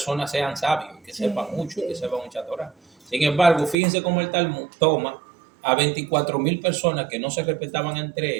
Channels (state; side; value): drops out; left; at 3.8 s